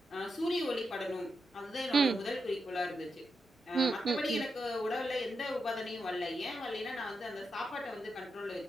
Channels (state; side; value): normal; both; correlation 0.86